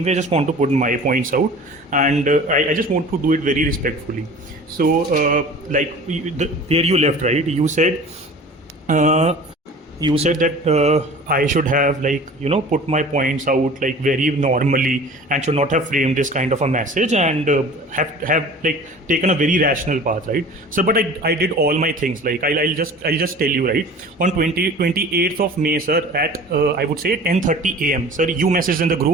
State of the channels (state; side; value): normal; both; correlation 0.42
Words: way, I just want to put my points out, and I just want to do it very respectfully. So like where you left, right? You said that I should have like put my points out like very normally and should not have framed this kind of a message and have like taken a very rational path, right? So but I did all my things. Like I'll just tell you, right, on 28th of May, sir, at I would say 10:30 AM, sir, you messaged in the